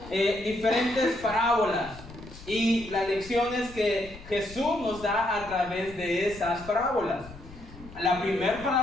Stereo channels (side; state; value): left; noise; rumble, 17 dB below the sound